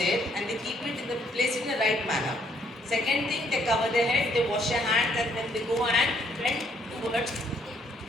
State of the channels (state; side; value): normal; both; correlation 0.69